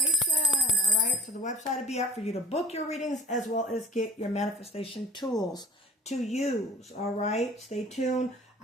All right. So the website will be up for you to book your readings as well as get your manifestation tools to use. All right. Stay tuned.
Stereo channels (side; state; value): both; normal; correlation 0.45